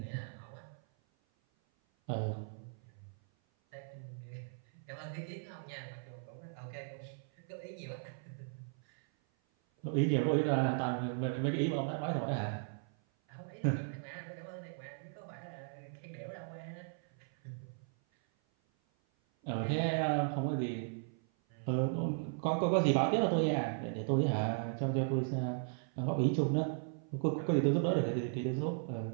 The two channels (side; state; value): left; silent; 53 dB below the other